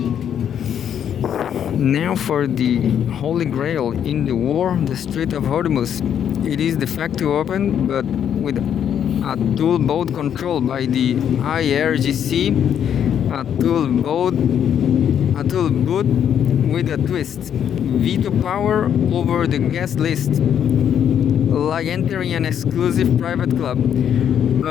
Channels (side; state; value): right; quieter; 9.0 dB